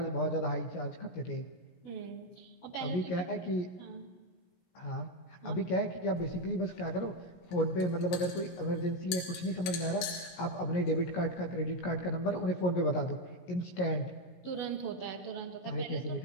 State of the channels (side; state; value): right; late; 17 ms